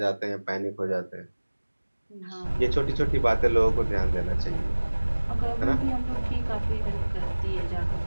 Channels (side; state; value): both; inverted; correlation -1.00